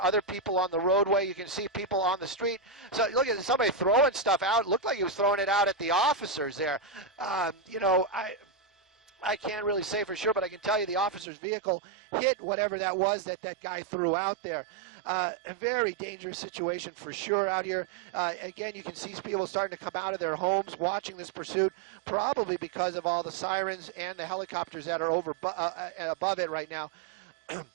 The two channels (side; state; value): left; drops out; at 11.2 s